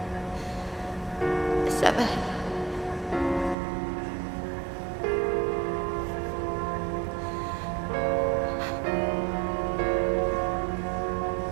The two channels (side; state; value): left; drops out; at 3.6 s